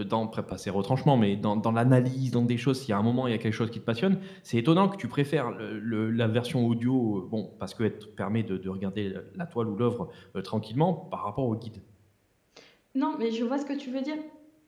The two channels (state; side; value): identical; both; correlation 1.00